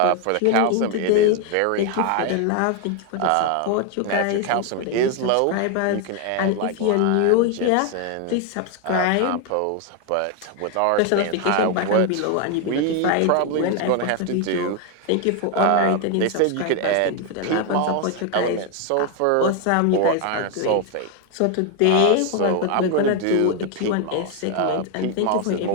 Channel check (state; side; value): different; both; correlation 0.01